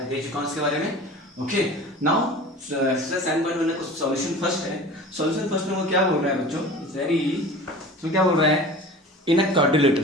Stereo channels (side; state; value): both; normal; correlation 0.39